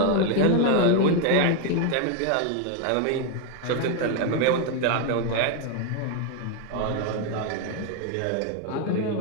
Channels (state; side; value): different; both; correlation 0.01